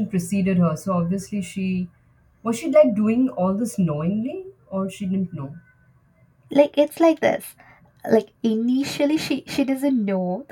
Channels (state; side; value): identical; both; correlation 1.00